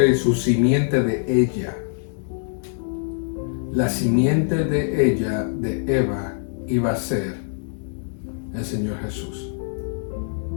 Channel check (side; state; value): right; silent; 63 dB below the other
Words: y su simiente de ella. La simiente de ella, de Eva, iba a ser el Señor Jesús.